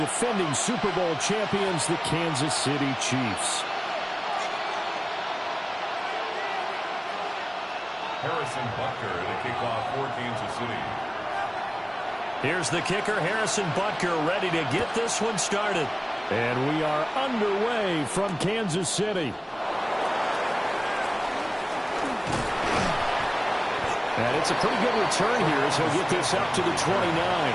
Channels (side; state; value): both; identical; correlation 1.00